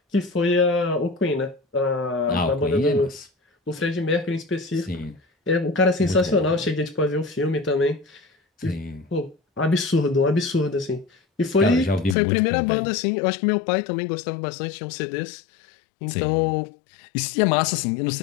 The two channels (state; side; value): drops out; right; at 12.2 s